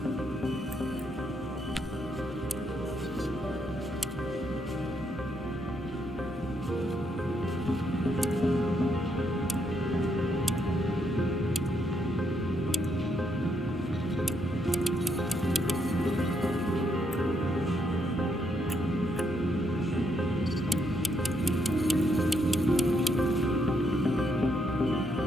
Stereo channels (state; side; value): normal; both; correlation 0.76